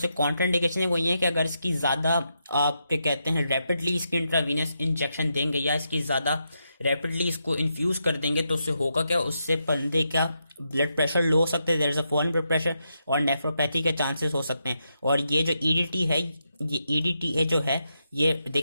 कॉन्ट्राइंडिकेशन है वो ये है कि अगर इसकी ज्यादा आप क्या कहते हैं रैपिडली इसकी इंट्रावीनस इंजेक्शन देंगे या इसकी ज्यादा रैपिडली इसको इन्फ्यूज कर देंगे तो उससे होगा क्या, उससे बंदे का ब्लड प्रेशर लो हो सकते हैं, there is a fallen blood pressure और नेफ्रोपैथी के चांसेस हो सकते हैं। और ये जो EDT है, ये EDTA जो है ये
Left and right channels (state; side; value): inverted; both; correlation -0.83